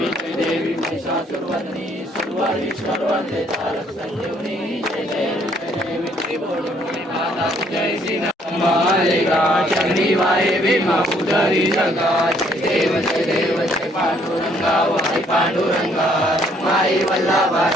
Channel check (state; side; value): normal; both; correlation 0.65